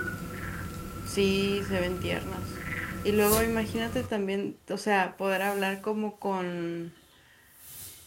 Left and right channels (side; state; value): both; identical; correlation 1.00